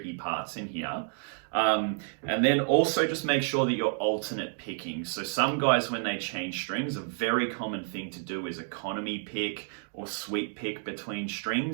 parts in here. And then also just make sure that you're alternate picking. So some guys, when they change strings, a very common thing to do is economy pick or sweep pick between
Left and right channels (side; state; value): left; silent; 58 dB below the other